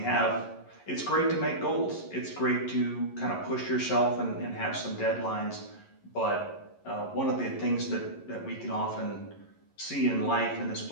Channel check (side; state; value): right; late; 11 ms